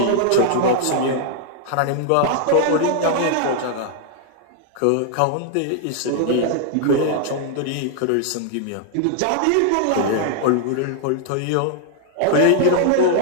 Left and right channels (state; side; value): different; both; correlation 0.00